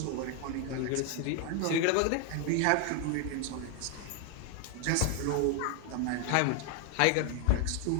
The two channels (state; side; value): different; both; correlation 0.01